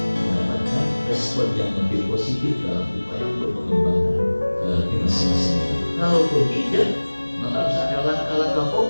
mendapatkan respon yang lebih positif dalam upaya untuk mengembangkan di masa-masa ini. Kalaupun tidak, maka harus ada langkah-langkah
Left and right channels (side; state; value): both; inverted; correlation -1.00